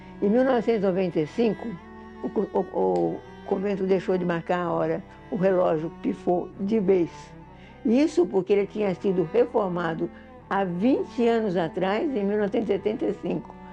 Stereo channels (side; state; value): both; identical; correlation 1.00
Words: Em 1995, o convento deixou de marcar a hora, o relógio pifou de vez. Isso porque ele tinha sido reformado há 20 anos atrás, em 1975.